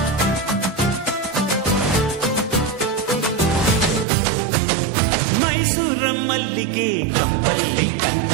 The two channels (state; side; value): drops out; left; at 4.0 s